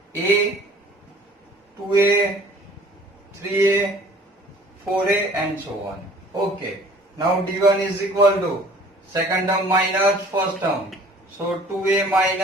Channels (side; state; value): both; normal; correlation 0.51